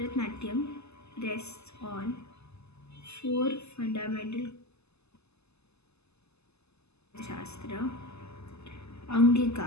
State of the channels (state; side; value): late; right; 0.80 ms